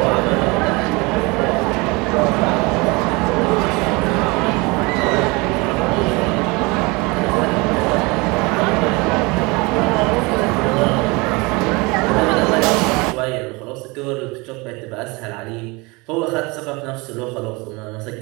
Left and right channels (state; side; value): quieter; left; 25.9 dB